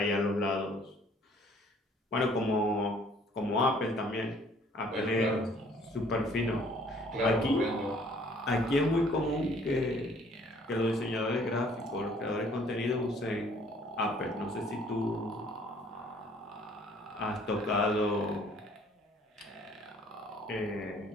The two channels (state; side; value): normal; both; correlation 0.58